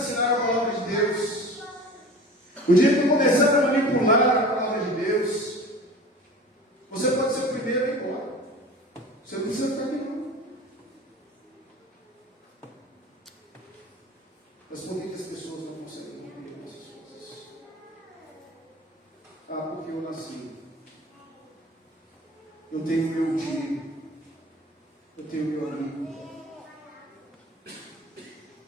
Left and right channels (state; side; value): normal; both; correlation 0.39